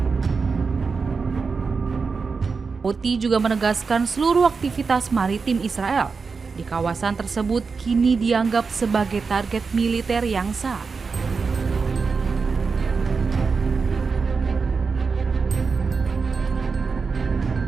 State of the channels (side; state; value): left; quieter; 4.9 dB